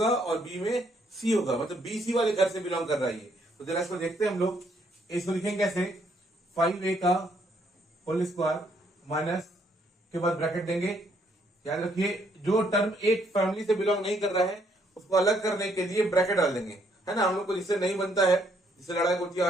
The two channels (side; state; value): both; normal; correlation 0.70